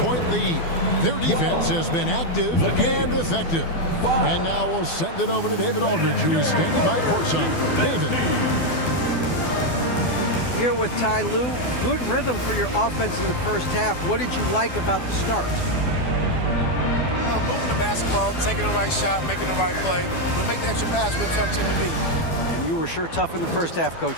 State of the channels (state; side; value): late; right; 12 ms